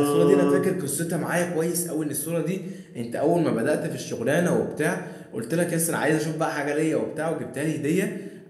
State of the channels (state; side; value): identical; both; correlation 1.00